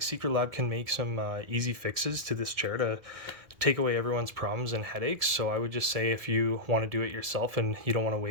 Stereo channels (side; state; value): left; late; 1.7 ms